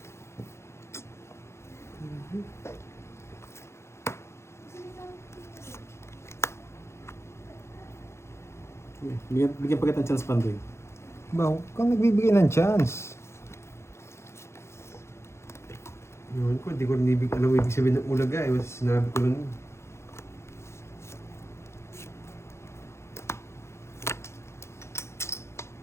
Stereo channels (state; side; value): late; right; 0.13 ms